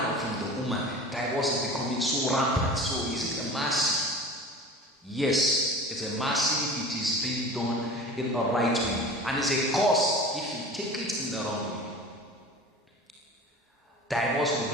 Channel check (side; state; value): both; normal; correlation 0.38